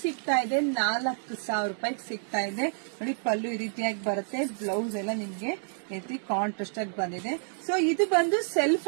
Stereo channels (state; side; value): silent; left; 59 dB below the other